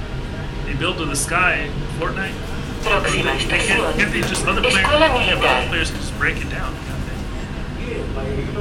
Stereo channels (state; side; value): identical; both; correlation 1.00